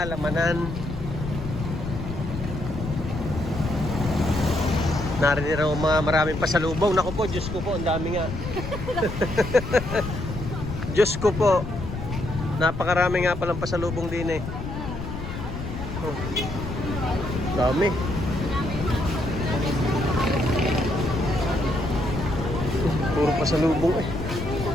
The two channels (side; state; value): left; noise; rumble, 7 dB below the sound